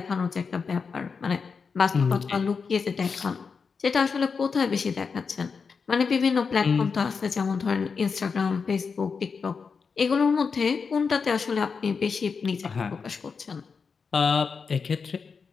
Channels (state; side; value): quieter; right; 5.4 dB